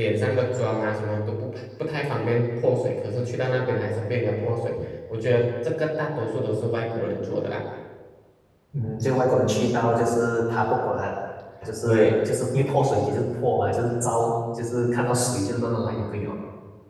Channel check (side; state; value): both; identical; correlation 1.00